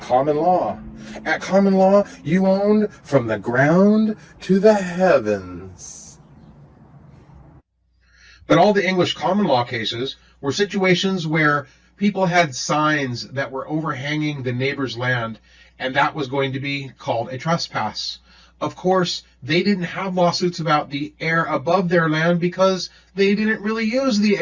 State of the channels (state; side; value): identical; both; correlation 1.00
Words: common law. At common law, you owned from the ground to the heavens. But all the English common law cases were situations where people had signs that were overhanging the neighbor's land, and that was going to be called a trespass. Of course, they didn't have lawsuits about the air above their land because they didn't really use the